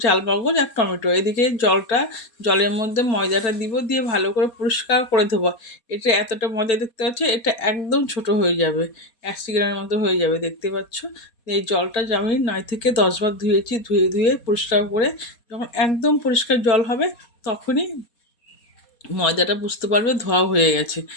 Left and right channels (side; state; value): right; late; 4.2 ms